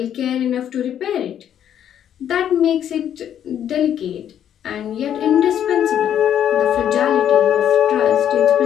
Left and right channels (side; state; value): right; quieter; 9.9 dB